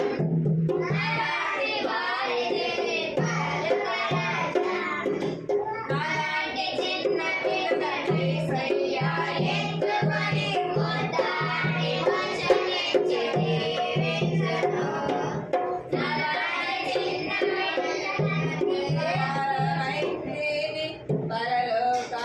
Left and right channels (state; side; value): identical; both; correlation 1.00